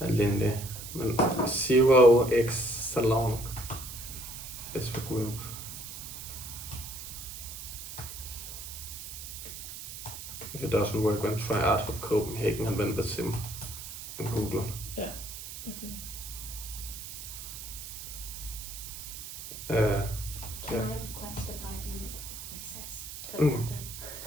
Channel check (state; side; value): noise; right; hiss, 10 dB below the sound